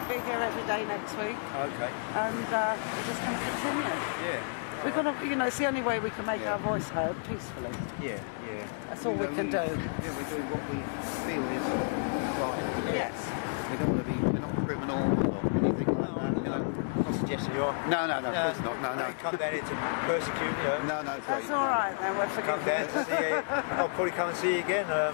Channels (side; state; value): right; silent; digital silence